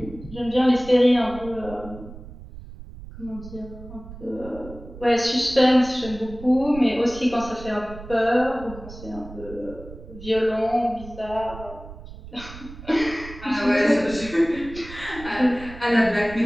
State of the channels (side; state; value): right; noise; rumble, 15 dB below the sound